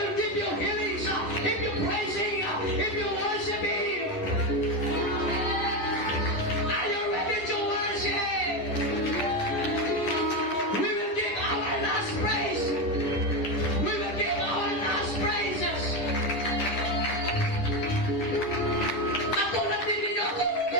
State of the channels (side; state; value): right; late; 10 ms